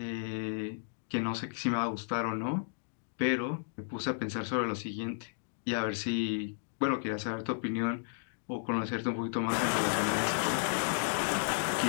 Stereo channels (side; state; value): right; silent; digital silence